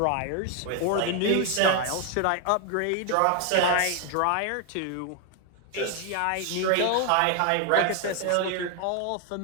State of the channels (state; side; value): different; both; correlation 0.00